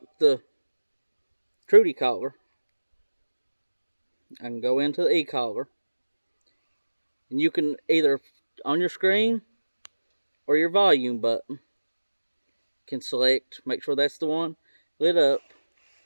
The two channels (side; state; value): both; inverted; correlation -1.00